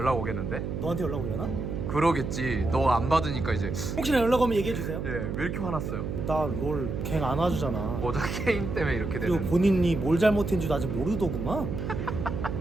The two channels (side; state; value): right; noise; hum, 4 dB below the sound